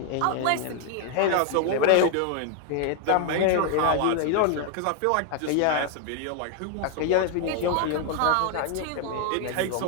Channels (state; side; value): different; both; correlation 0.00